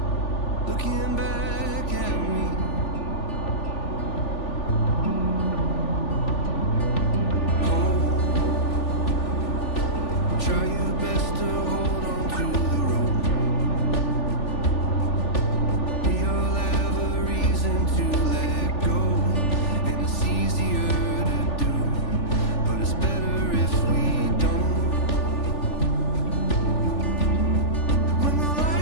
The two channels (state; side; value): late; right; 3.4 ms